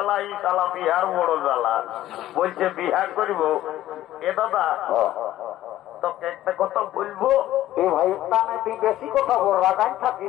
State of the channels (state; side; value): quieter; right; 14.0 dB